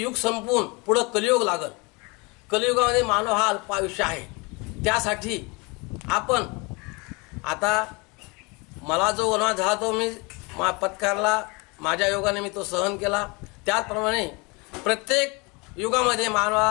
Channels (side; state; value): right; quieter; 28.1 dB